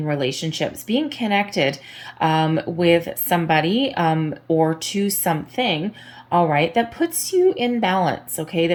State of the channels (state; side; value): identical; both; correlation 1.00